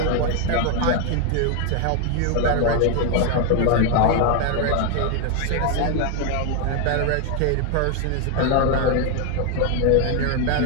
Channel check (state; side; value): different; both; correlation 0.01